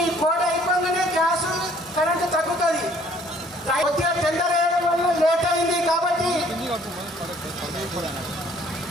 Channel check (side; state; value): both; normal; correlation 0.59